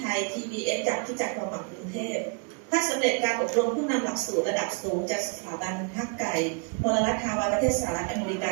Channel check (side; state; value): left; quieter; 37.9 dB